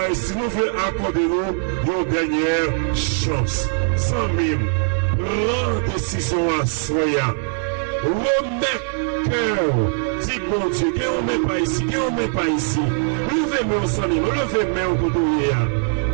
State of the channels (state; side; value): silent; left; 65 dB below the other